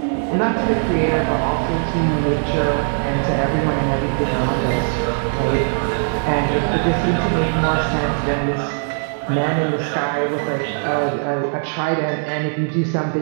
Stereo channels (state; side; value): silent; left; 60 dB below the other